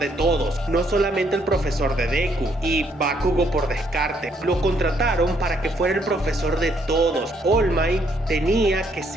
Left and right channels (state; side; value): normal; both; correlation 0.70